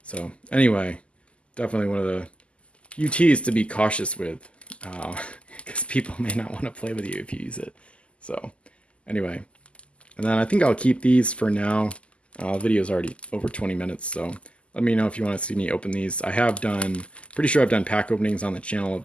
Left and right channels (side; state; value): right; late; 0.056 ms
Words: anyway, definitely one of the UTs to be cautious with, because people may not want to play with you if you use it. So anyway, and then I think I'll keep these for now. The video's already over 20 minutes, so let me know if you want to see me open these. I have done, pretty sure I've done pack openings on the channel of